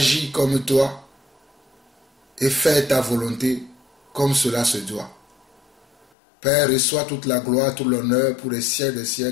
comme toi, et faire ta volonté comme cela se doit. Père, reçois toute la gloire, tout l'honneur pour les siècles des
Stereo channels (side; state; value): right; drops out; at 6.1 s